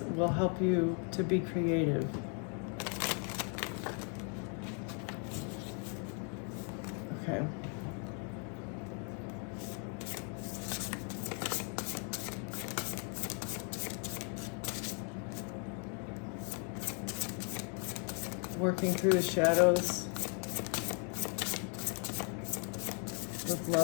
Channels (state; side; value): quieter; right; 38.3 dB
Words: will help you to be creative. Okay. Working through the shadows with